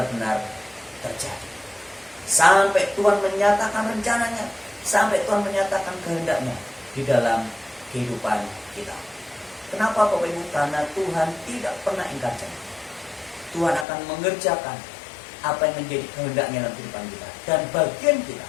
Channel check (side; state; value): right; drops out; at 13.9 s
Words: terjadi. Sampai Tuhan menyatakan rencananya, sampai Tuhan menyatakan kehendaknya di dalam kehidupan kita. Kenapa Bapak Ibu? Karena Tuhan tidak pernah ingkar janji. Tuhan akan mengerjakan apa yang menjadi kehendaknya dalam kehidupan kita. Dan bagian kita,